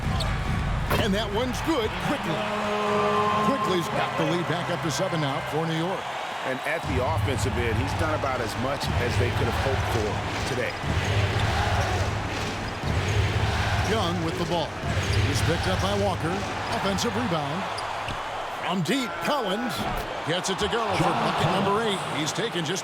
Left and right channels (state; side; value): identical; both; correlation 1.00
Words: And that one's good quickly. Quickly's got the lead back up to 7 now for New York. And at the offensive end, he's done about as much as they could have hoped for today. Young with the ball. He's picked up by Walker. Offensive rebound. From deep, Collins gets it to go for bucket number 8. He's taken just